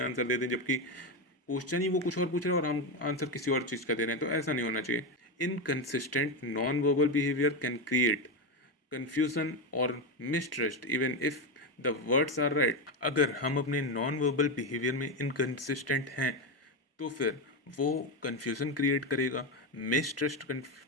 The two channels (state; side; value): normal; both; correlation 0.12